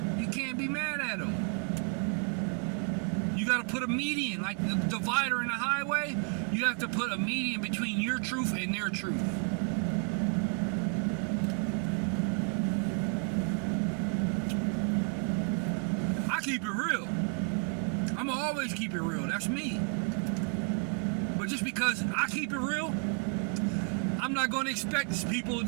You can't be mad at them. You got to put a median, like the divider in the highway. You have to put a median between your truth and their truth. I keep it real. I'm gonna always keep it real. That's me. But just because I keep it real, I'm not going to expect people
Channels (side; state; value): left; quieter; 39.7 dB